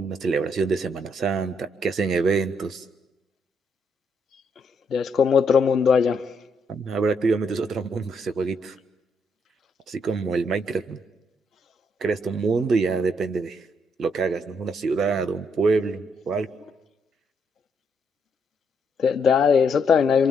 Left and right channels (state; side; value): normal; both; correlation 0.75